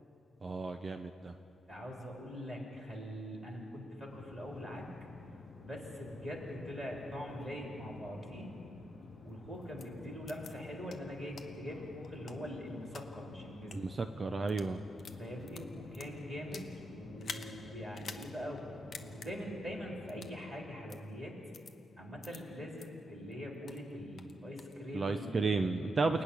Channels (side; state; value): both; normal; correlation 0.83